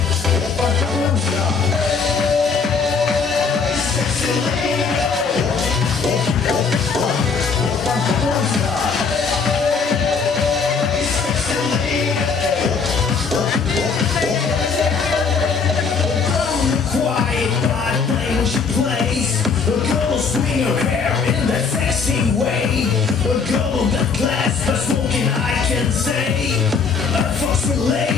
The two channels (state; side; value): quieter; right; 5.3 dB